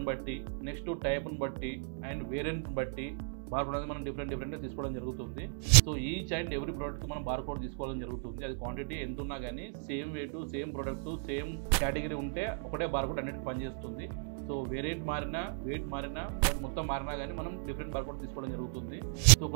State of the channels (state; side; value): silent; left; digital silence